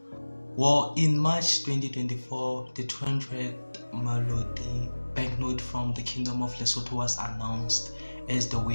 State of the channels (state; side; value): inverted; both; correlation -1.00